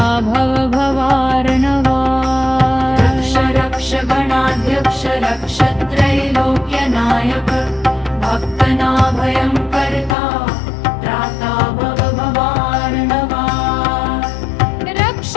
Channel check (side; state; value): right; drops out; at 10.2 s